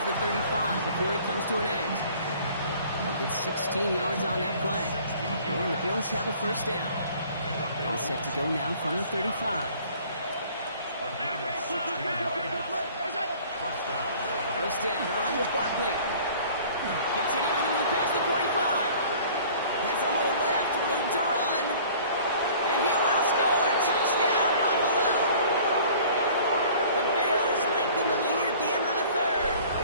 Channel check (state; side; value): inverted; both; correlation -0.50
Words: the 35 before it comes to an end. They'll get 16 yards on that play. And the Bills have a 1st down. All set to go now from the 35. A gain of 16 yards. 1st down. 1st down, around with Barkley. Continuing to move past the 45. Has a hole left, room to run. And he will score. Touchdown, Buffalo. The Bills lengthen the lead at the end of the 3rd.